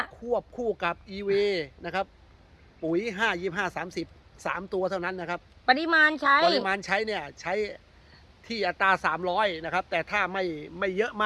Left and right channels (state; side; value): identical; both; correlation 1.00